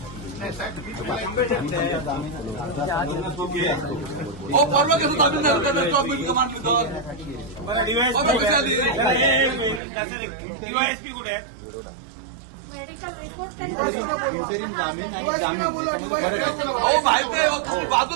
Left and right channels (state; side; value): drops out; left; at 9.8 s